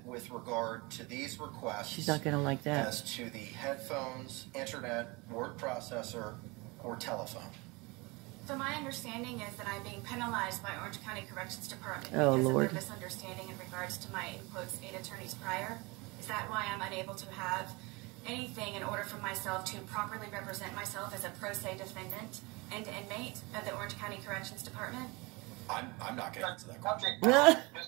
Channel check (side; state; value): left; quieter; 25.9 dB